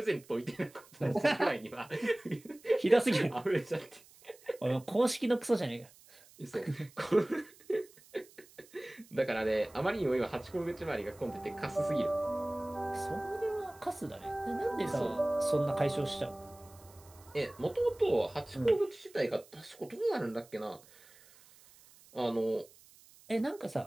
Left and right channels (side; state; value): right; noise; hiss, 25 dB below the sound